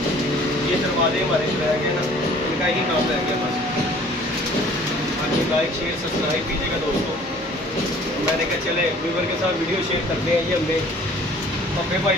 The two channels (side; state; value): both; normal; correlation 0.52